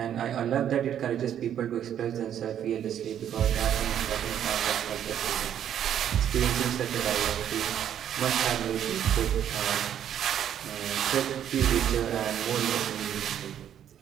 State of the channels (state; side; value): quieter; left; 9.9 dB